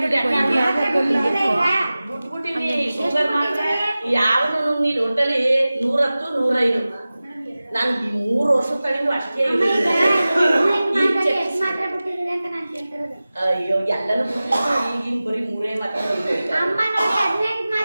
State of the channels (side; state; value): both; inverted; correlation -0.97